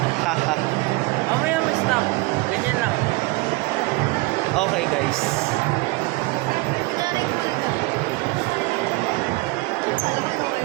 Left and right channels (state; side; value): quieter; left; 23.4 dB